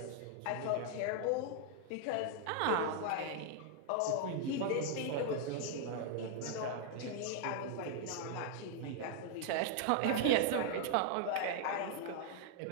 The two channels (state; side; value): different; both; correlation 0.00